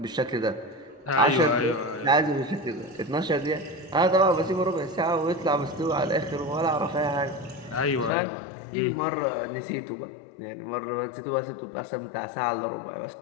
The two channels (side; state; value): right; drops out; at 8.1 s